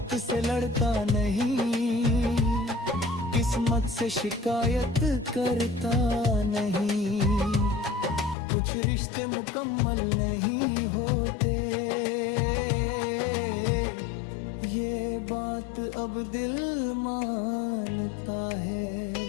से लड़ता नहीं, किस्मत से शिकायत करता नहीं। कुछ रिश्ते मुकम्मल नहीं होते, ये बात अब दिल मानता है।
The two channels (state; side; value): drops out; right; at 8.3 s